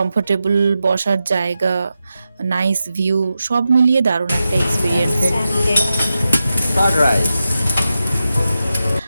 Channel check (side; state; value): both; inverted; correlation -0.90